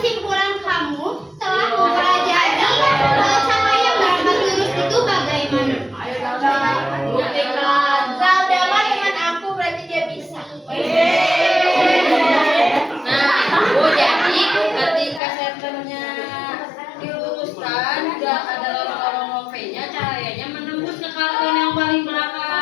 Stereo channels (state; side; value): drops out; right; at 15.2 s